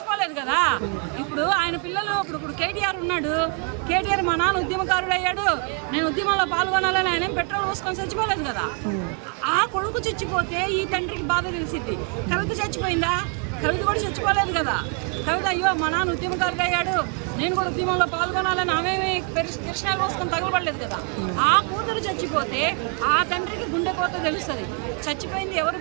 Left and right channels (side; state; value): left; quieter; 37.5 dB